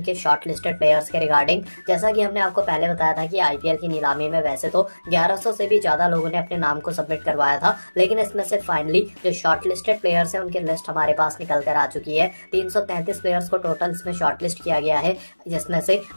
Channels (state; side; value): inverted; both; correlation -1.00